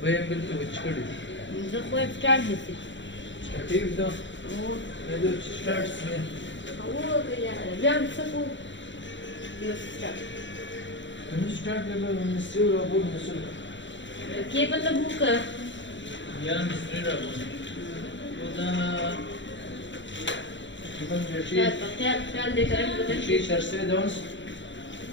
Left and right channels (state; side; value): late; right; 0.54 ms